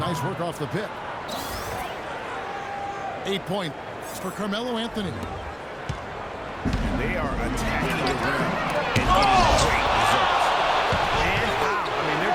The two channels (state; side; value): identical; both; correlation 1.00